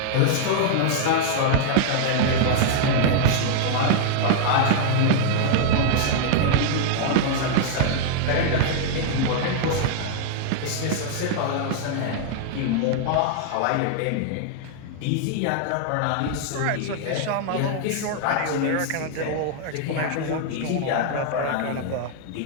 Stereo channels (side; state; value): both; different; correlation -0.01